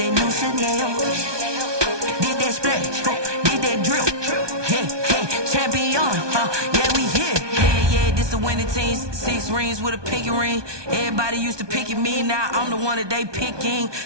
new Chanel. Did that splash, did that drill. Yeah, champion, yeah, we here. Yeah, this the winning team. 6 rings with a pinky ring. Everybody used to pick at me, now I'm the one that they picking.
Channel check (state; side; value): late; left; 1.2 ms